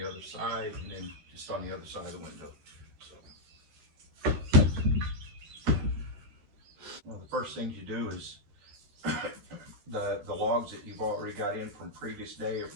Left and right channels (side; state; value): left; late; 13 ms